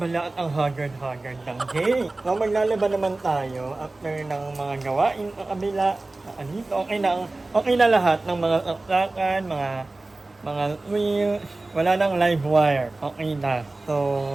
at ang haggard ng day. So, maglalaba naman tayo after ng mga gawain sa kabila. Andito, okay na lahat ng mga saksakan, mga mga wheels, wala nang live wire. Okay na. So,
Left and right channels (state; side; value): quieter; left; 3.1 dB